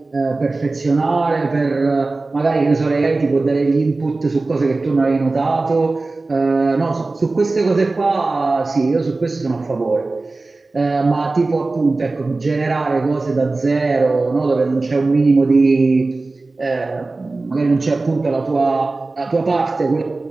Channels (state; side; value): quieter; left; 3.4 dB